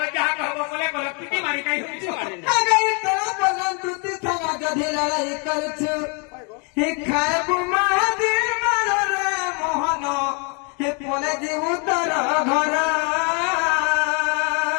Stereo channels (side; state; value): right; quieter; 35.1 dB